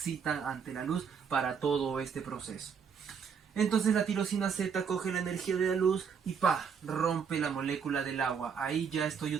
ante la luz para todo este proceso. Entonces la tirosina Z coge la energía de la luz y ¡pah!, rompe la molécula del agua. Ahí ya estoy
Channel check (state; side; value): quieter; left; 6.6 dB